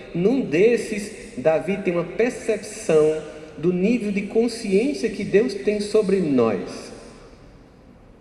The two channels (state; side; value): identical; both; correlation 1.00